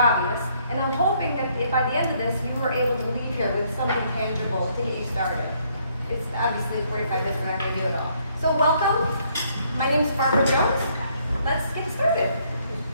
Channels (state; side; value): inverted; both; correlation -0.68